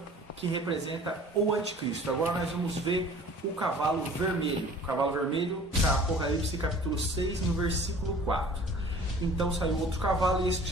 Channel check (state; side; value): normal; both; correlation 0.48